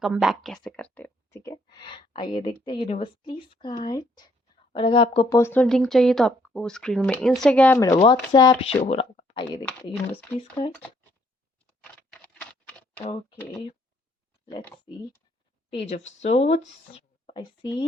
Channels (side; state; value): both; normal; correlation 0.68